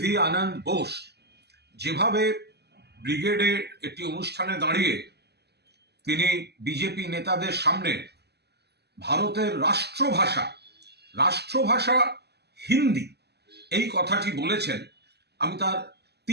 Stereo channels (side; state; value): left; late; 0.48 ms